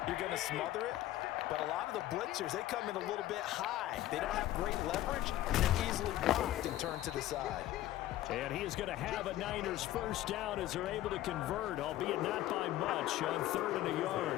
you're going to smother it. But a lot of the blitzers, they come in a little bit high. They don't have great leverage, and they're easily blocked and turned to the side. And he is going to have a Niners first down as they're able to convert, albeit not by much, on 3rd and a yard.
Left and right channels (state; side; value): quieter; right; 14.5 dB